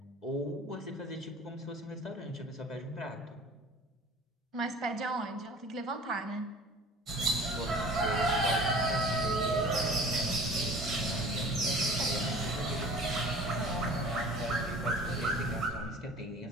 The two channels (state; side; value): normal; both; correlation 0.45